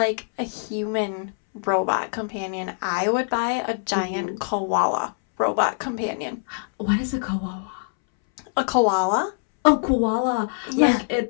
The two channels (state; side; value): silent; right; 63 dB below the other